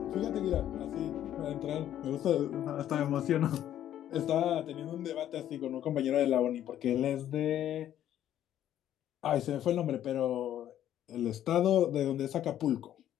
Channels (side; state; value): right; quieter; 11.4 dB